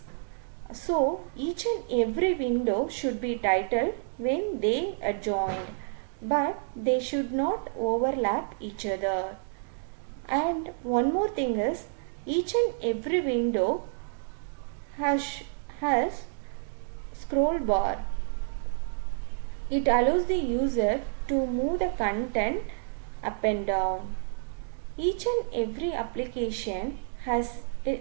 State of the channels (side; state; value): left; silent; digital silence